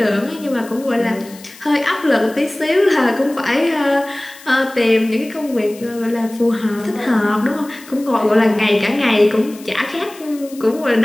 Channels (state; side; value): noise; left; hiss, 20 dB below the sound